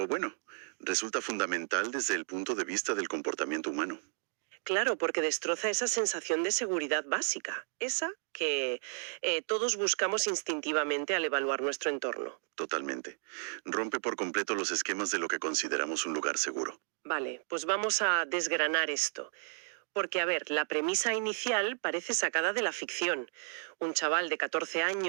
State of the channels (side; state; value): left; silent; 55 dB below the other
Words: bueno, resulta fundamental desde el punto de vista del comportamiento humano. Claro, porque destroza esa sensación de seguridad básica, esa que todos buscamos instintivamente al evaluar nuestro entorno. Totalmente. Rompe por completo los esquemas de lo que consideramos un lugar seguro. Vale, pues vamos a desgranar esto. Porque, a ver, la premisa inicial parece sacada de la ficción. Un chaval de 14